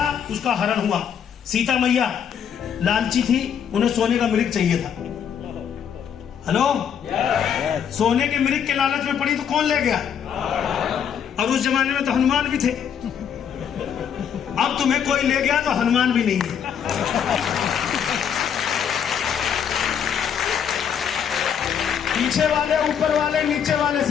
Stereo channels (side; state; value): right; quieter; 8.1 dB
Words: उसका हरण हुआ। सीता मैया लालची थी, उन्हें सोने का मृग चाहिए था। हेलो, सोने के मृग के लालच में पड़ी तो कौन ले गया? और उस जमाने में तो हनुमान भी थे। अब तुम्हें कोई ले गया तो हनुमान भी नहीं है। पीछे वाले, ऊपर वाले, नीचे वाले,